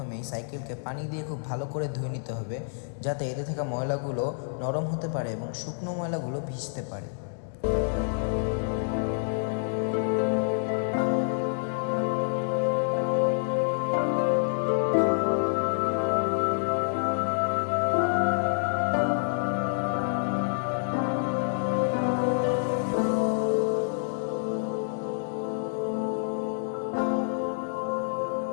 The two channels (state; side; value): silent; right; digital silence